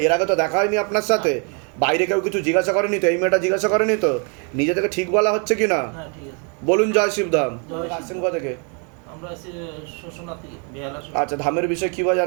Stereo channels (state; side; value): quieter; left; 36.2 dB